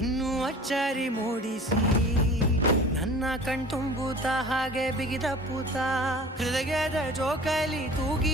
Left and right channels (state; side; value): normal; both; correlation 0.43